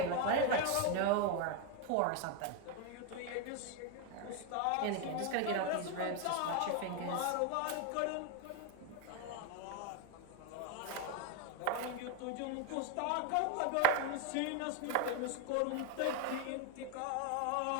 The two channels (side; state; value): both; different; correlation 0.01